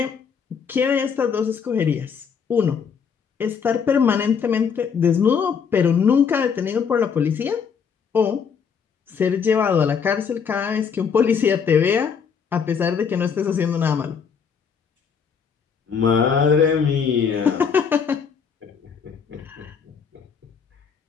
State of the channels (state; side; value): quieter; right; 6.5 dB